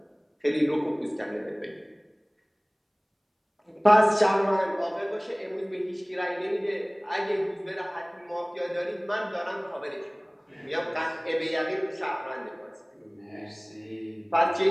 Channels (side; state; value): both; identical; correlation 1.00